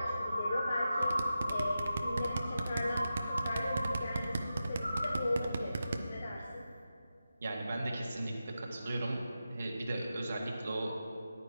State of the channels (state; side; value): inverted; both; correlation -0.90